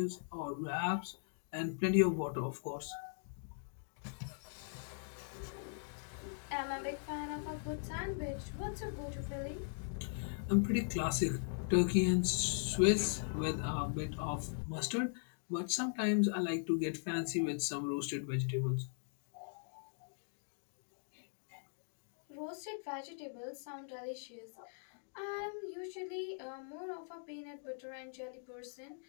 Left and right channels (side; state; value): right; silent; digital silence